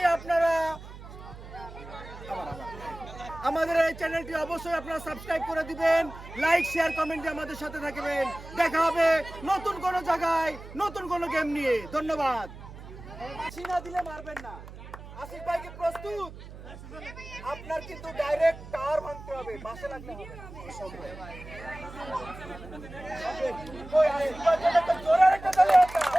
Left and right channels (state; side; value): noise; right; hum, 15 dB below the sound